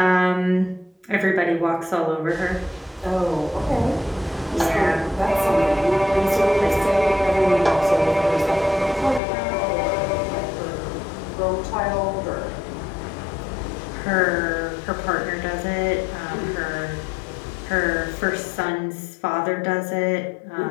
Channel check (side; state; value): right; drops out; at 9.2 s